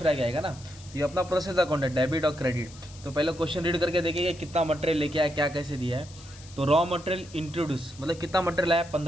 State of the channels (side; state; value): left; noise; hiss, 20 dB below the sound